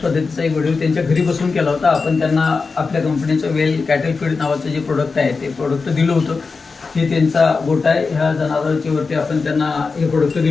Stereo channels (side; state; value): right; quieter; 4.5 dB